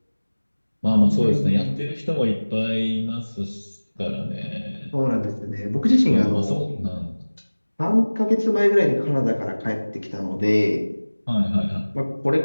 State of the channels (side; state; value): both; inverted; correlation -1.00